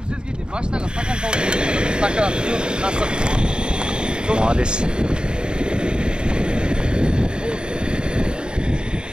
сізге де баштаға стакан салып стакан, қасық. Молодец.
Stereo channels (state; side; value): late; left; 0.049 ms